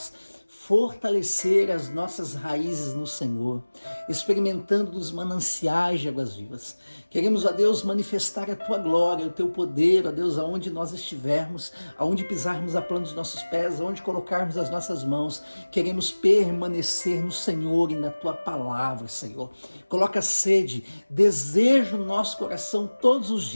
fortalecer as nossas raízes no Senhor, experimentando dos mananciais de águas vivas. Queremos, ó Deus, manifestar a Tua glória, o Teu poder, ó Deus, aonde nós estivermos, aonde pisarmos a planta dos nossos pés, aonde colocarmos as nossas mãos. Queremos permanecer no Senhor e na Tua palavra, Senhor. Coloca sede, desejo no nosso coração todos os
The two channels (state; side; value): inverted; both; correlation -1.00